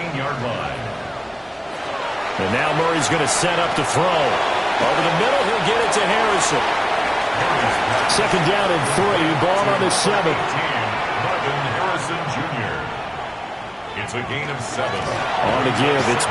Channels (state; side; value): identical; both; correlation 1.00